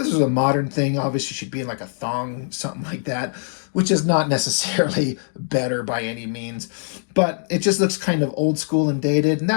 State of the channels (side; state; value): right; silent; digital silence